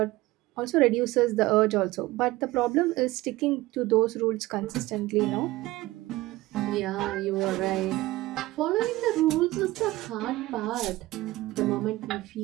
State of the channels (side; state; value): left; quieter; 18.5 dB